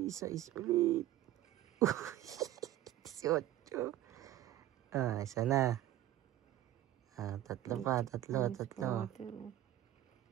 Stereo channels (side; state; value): left; quieter; 13.5 dB